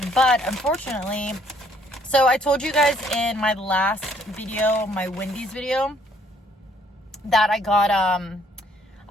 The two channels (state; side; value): normal; both; correlation 0.64